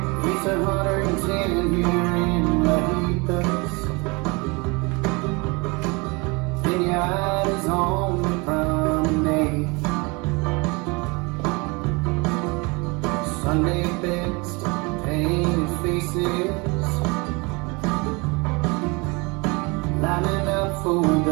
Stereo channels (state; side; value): quieter; left; 27.7 dB